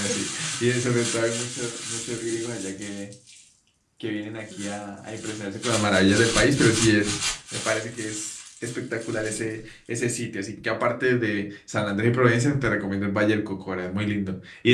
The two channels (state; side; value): identical; both; correlation 1.00